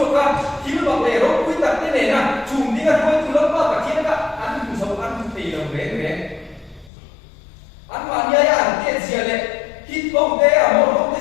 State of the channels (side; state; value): right; drops out; at 6.9 s